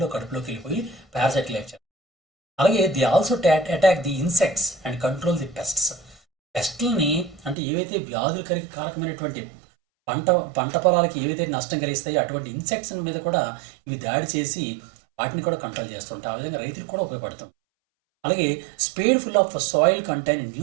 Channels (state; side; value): drops out; left; at 7.6 s